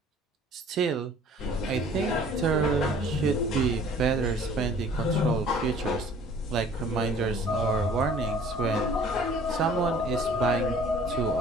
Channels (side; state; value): both; normal; correlation 0.52